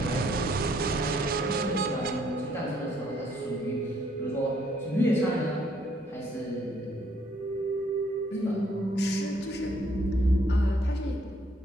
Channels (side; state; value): both; normal; correlation 0.67